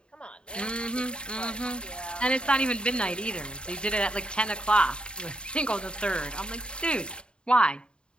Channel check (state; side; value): late; right; 0.052 ms